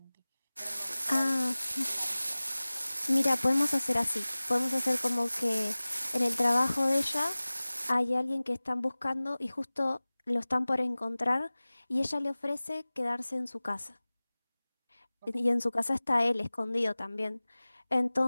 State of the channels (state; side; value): inverted; both; correlation -0.99